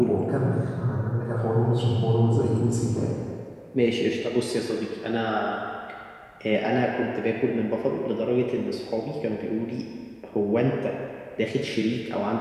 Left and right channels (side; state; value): both; identical; correlation 1.00